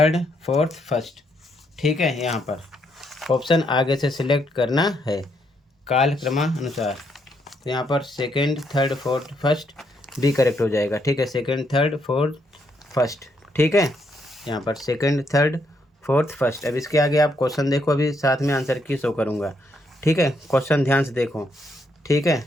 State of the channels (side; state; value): both; normal; correlation 0.75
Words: फोर्थ, फर्स्ट। ठीक है, यहाँ पर ऑप्शन आगे से सिलेक्ट करना है काल क्रमानुसार। तो यहाँ पर second, third, fourth, first B correct हो जाएगा। ठीक है, सेकंड, थर्ड, फोर्थ, फर्स्ट। ठीक है, यहाँ पर सेकंड, थर्ड, फोर्थ, फर्स्ट। अब इसके आगे आप क्वेश्चन देखो, अभी साथ में आंसर की शो करूँगा। ठीक है, क्वेश्चन ध्यान से देखो। ठीक